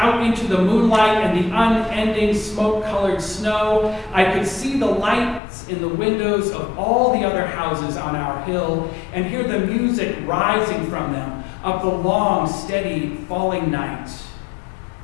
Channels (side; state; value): right; drops out; at 5.4 s